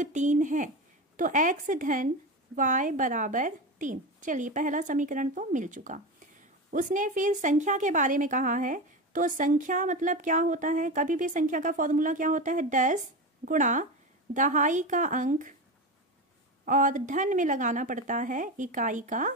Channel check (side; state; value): both; normal; correlation 0.22